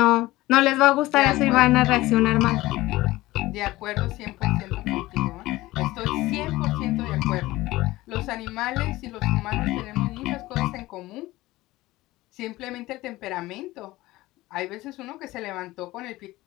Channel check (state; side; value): quieter; right; 18.3 dB